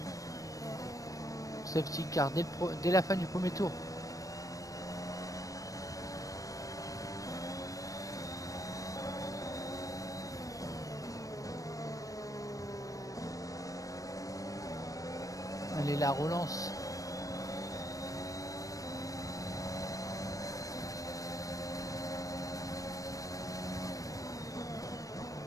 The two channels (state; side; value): late; right; 0.16 ms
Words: Safety car dès la fin du premier tour. Allez, la relance.